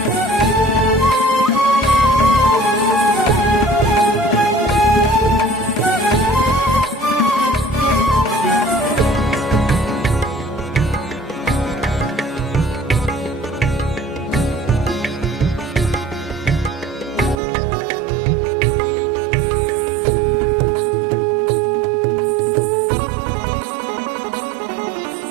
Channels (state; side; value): drops out; left; at 17.4 s